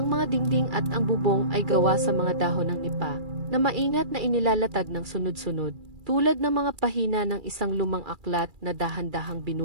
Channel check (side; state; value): left; late; 2.3 ms